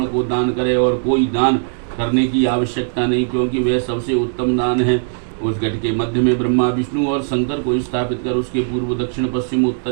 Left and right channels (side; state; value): left; silent; digital silence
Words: को दान करे। और कोई दान करने की आवश्यकता नहीं, क्योंकि वह सबसे उत्तम दान है। उस घट के मध्य में ब्रह्मा, विष्णु और शंकर को स्थापित कर उसके पूर्व, दक्षिण, पश्चिम,